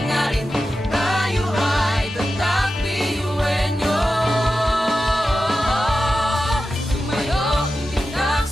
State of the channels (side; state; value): both; normal; correlation 0.92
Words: tayo ay tatak piyuwenyo. Tumayo, umitak,